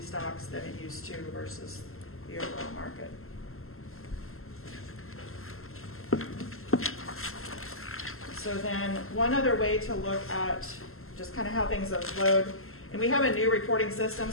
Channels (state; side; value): late; right; 0.62 ms